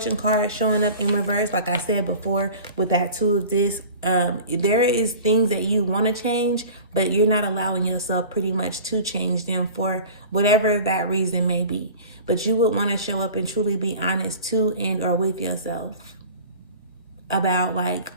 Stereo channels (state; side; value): inverted; both; correlation -0.40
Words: card showing up in reverse, like I said before, with that Two of Discs, there is things that you want to change, but you're not allowing yourself pretty much to change them for whatever that reason may be. But you would want to show up and truly be honest to and or with yourself about like